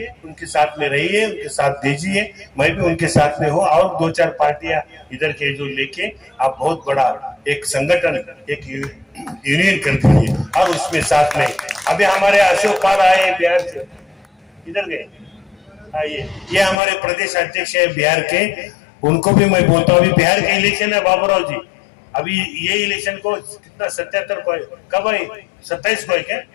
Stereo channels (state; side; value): drops out; right; at 16.8 s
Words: उनके साथ में रहिए, उनके साथ दीजिए। मैं भी उनके साथ में हूं, और 2-4 पार्टियां इधर के जो लेके आप बहुत बड़ा एक संगठन, एक यूनियन कर दीजिए, और उसमें साथ में अभी हमारे अशोक पाल आए बिहार से, इधर गए, आइए, ये हमारे प्रदेश अध्यक्ष है बिहार के, उनको भी मैं बोलता हूँ। अभी बिहार के इलेक्शन है बाबूराव जी, अभी ये इलेक्शन को कितना 77 को कब है? 27 को है क्या?